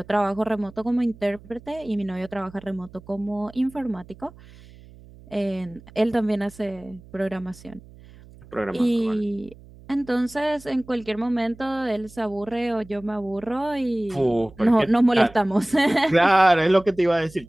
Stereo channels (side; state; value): right; noise; hum, 22 dB below the sound